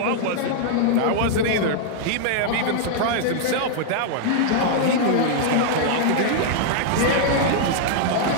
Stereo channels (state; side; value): different; both; correlation -0.01